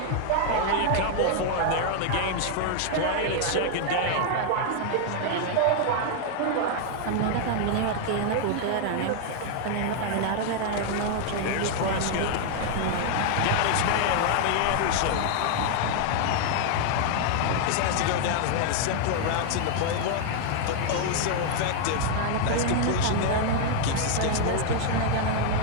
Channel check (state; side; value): different; both; correlation 0.00